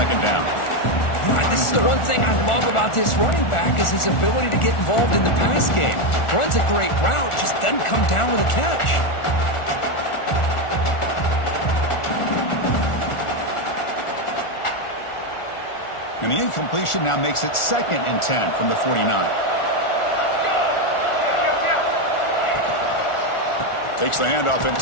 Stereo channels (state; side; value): late; right; 1.4 ms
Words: down. This is the one thing I love about this running back is his ability to get involved in the pass game. Runs a great route, just doesn't come down with a catch. And the incompletion now makes it 2nd and 10 from the 49. Takes the handoff and